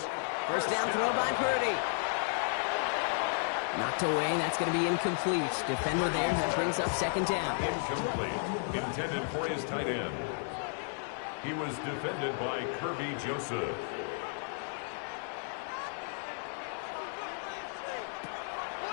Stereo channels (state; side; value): silent; right; 56 dB below the other